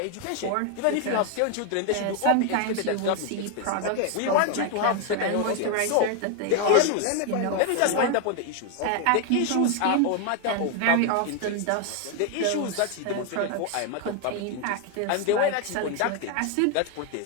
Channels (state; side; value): different; both; correlation 0.01